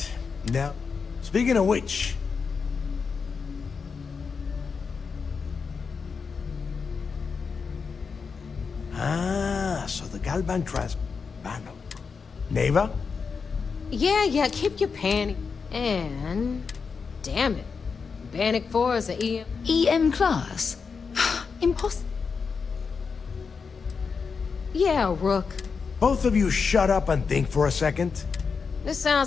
Now, speaking of which... so the Galban Transbano. Neighbor? Yeah, keep your panty. And... damn it. Bannock 4 is an EM. EM class? Impossible. Yeah, Rook. Both of you shut up and think for a second. This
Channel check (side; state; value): right; quieter; 5.4 dB